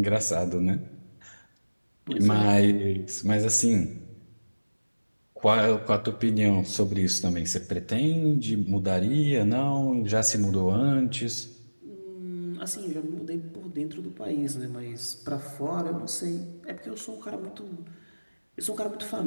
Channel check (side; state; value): both; inverted; correlation -1.00